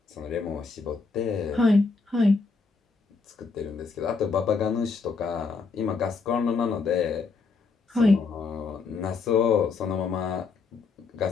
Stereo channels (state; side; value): quieter; right; 4.5 dB